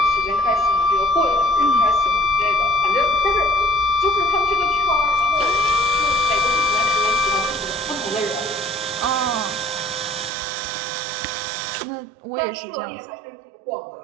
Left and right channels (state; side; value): drops out; left; at 10.3 s